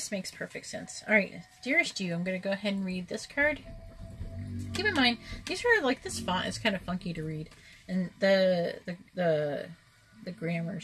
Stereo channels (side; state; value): both; identical; correlation 1.00